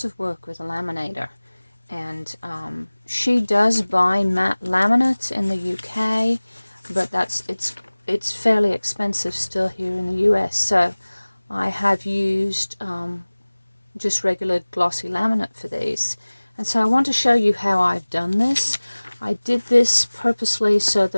of work with a laminator. And she does buy matte laminate in the UK, but it's fairly expensive still here in the US. So I have used just regular glossy laminate for these. And so I want to show you how I've done this. I did this purposely so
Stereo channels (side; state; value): both; inverted; correlation -1.00